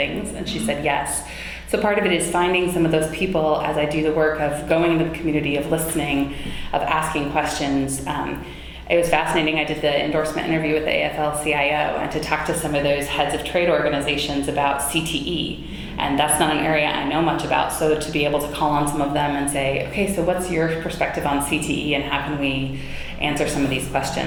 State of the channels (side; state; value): both; identical; correlation 1.00